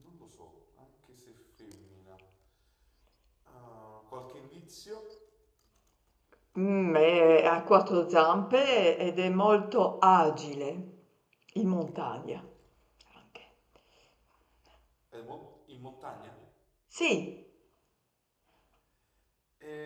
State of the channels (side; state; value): both; identical; correlation 1.00